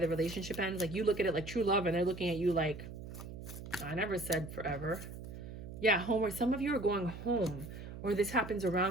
relationship ends. Like you look at it like true love, and they're looking at you like, I never said forever. Yeah, home, or some of you are going home, or this happens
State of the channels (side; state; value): right; noise; hum, 11 dB below the sound